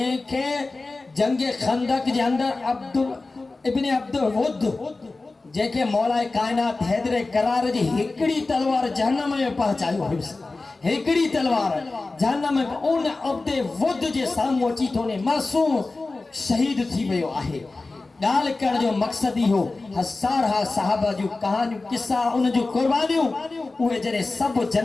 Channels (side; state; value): right; quieter; 3.4 dB